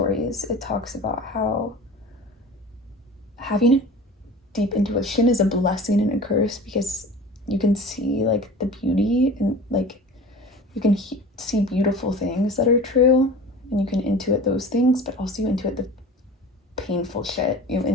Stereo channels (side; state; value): both; normal; correlation 0.38